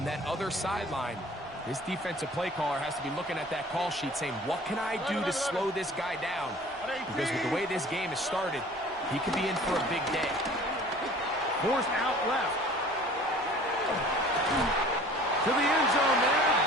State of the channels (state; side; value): noise; left; rumble, 26 dB below the sound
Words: that other sideline, this defensive play caller has to be looking at that call sheet saying, what can I do to slow this guy down? Because with the way this game has started, he could be in for a big day. Forced out left. To the end zone there,